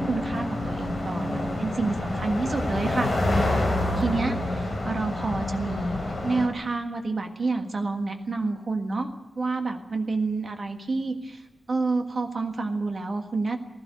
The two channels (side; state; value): both; normal; correlation 0.91